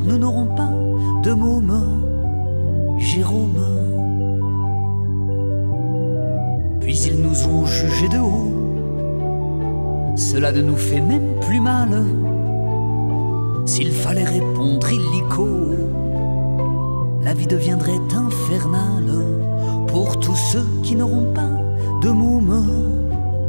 nous n'aurons pas de môme, Jérôme. Puis ils nous ont jugés de haut, cela ne nous fait même plus mal. S'il fallait répondre illico, la vie deviendrait infernale pour tous ceux qui n'auront pas de môme,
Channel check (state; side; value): inverted; both; correlation -1.00